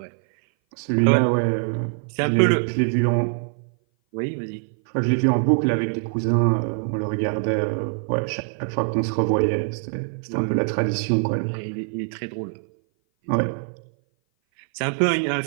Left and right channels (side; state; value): left; silent; 58 dB below the other